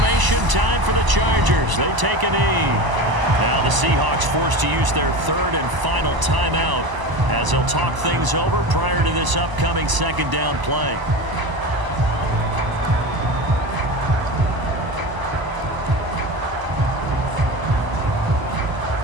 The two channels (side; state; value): left; late; 1.0 ms